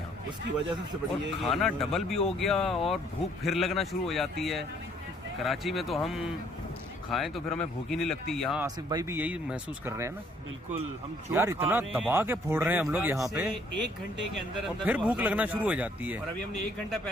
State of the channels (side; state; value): both; normal; correlation 0.63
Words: उसकी वजह सबसे और बड़ी है कि खाना डबल भी हो गया और भूख फिर लगना शुरू हो जाती है। कराची में तो हम खाएं तो फिर हमें भूख ही नहीं लगती, यहाँ आसिफ भाई भी यही महसूस कर रहे हैं ना। बिल्कुल, हम जो यार खा इतना रहे हैं, दबा के फोड़ रहे हैं हम लोग यहाँ पे, 1 घंटे के अंदर और अंदर फिर वो भूख हजम लगना हो जा शुरू हो रहा जाती है। और अभी हमने 1 घंटा